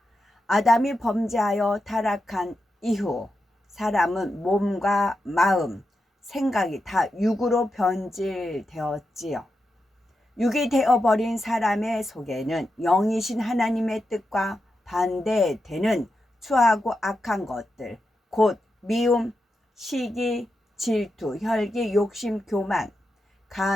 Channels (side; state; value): both; normal; correlation 0.88